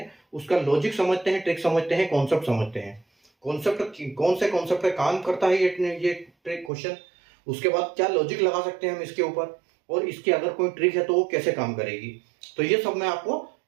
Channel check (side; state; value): left; drops out; at 6.7 s